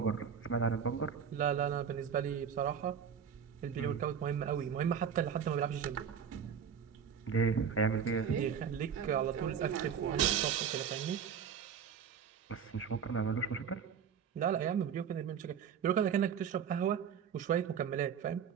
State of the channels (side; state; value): left; quieter; 7.5 dB